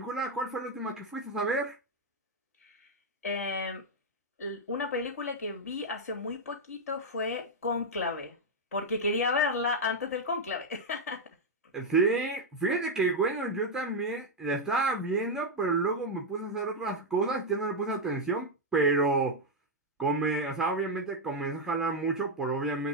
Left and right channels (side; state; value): both; normal; correlation 0.01